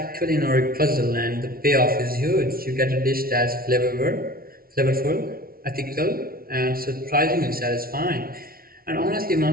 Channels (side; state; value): left; late; 0.43 ms